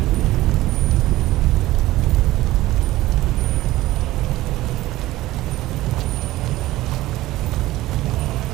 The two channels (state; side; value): quieter; left; 16.8 dB